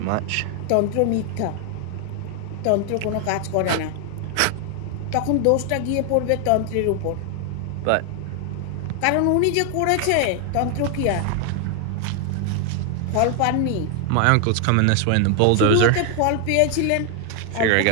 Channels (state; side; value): different; both; correlation 0.00